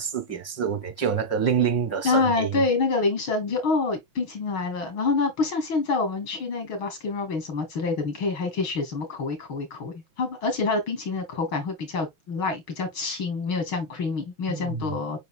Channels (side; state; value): right; late; 5.6 ms